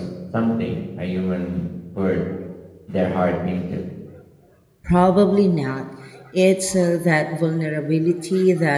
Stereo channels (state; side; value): identical; both; correlation 1.00